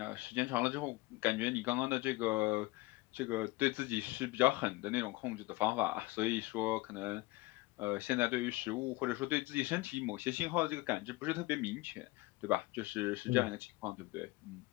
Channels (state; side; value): quieter; right; 21.1 dB